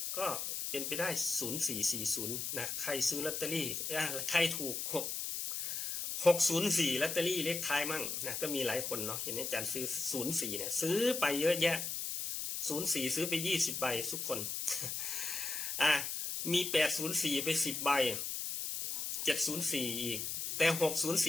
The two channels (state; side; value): noise; left; hiss, 3 dB below the sound